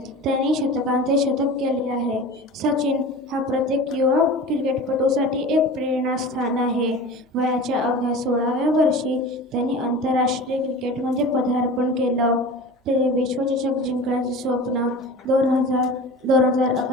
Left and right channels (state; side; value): normal; both; correlation 0.35